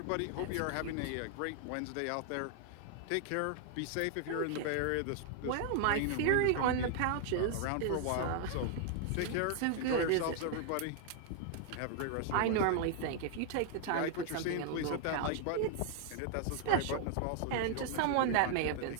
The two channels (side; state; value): both; different; correlation 0.00